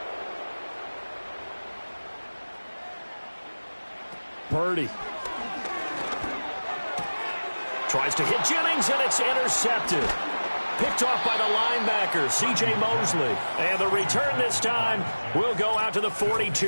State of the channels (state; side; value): inverted; both; correlation -1.00